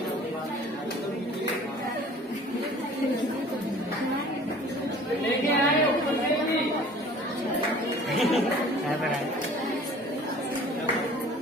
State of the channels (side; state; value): both; normal; correlation 0.48